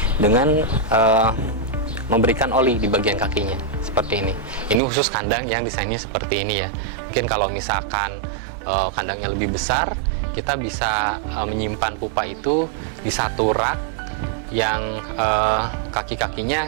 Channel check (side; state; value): left; drops out; at 4.8 s